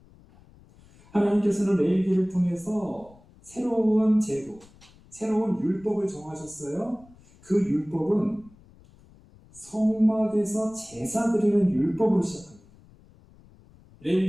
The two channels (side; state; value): left; noise; rumble, 26 dB below the sound